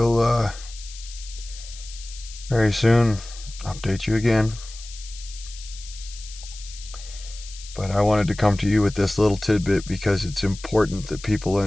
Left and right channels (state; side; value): noise; left; hiss, 16 dB below the sound